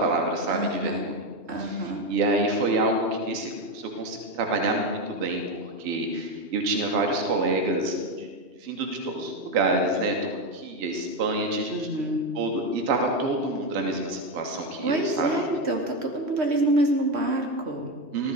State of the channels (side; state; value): left; late; 3.1 ms